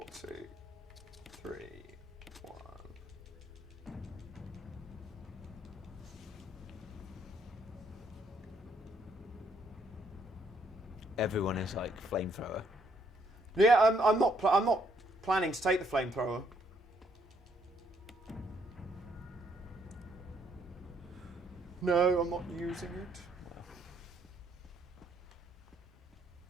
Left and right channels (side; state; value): both; normal; correlation 0.70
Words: two, three, one. Everyone is like flamethrower. Yeah, I'm not planning to take the flamethrower. No, I'm not using it.